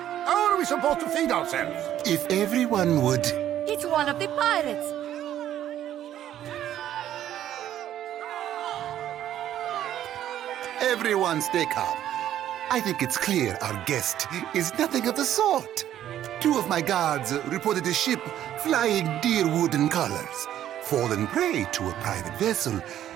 How are we supposed to feed ourselves? If everyone would... It's one of the pirates. Everyone stay calm. I think it's clear our guest is nothing of the sort. 2 of my guards reported a ship flying deer wooden colors, fallen prey to a private vessel.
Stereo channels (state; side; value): quieter; left; 11.5 dB